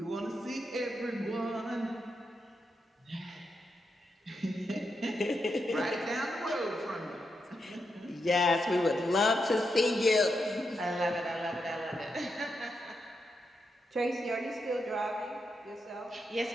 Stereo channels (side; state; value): both; normal; correlation 0.84